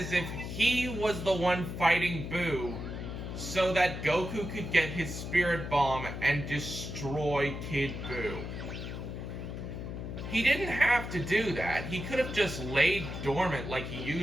if he was the one fighting Buu so that Goku could get his Spirit Bomb and destroy Kid Buu. He didn't have to do that. He could have just laid dormant like he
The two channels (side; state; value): left; noise; hum, 7 dB below the sound